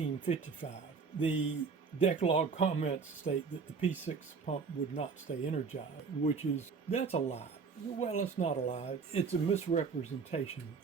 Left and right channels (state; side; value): quieter; left; 5.2 dB